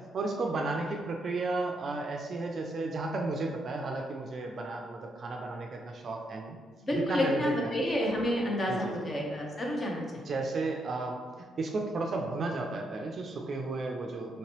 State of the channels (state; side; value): normal; both; correlation 0.78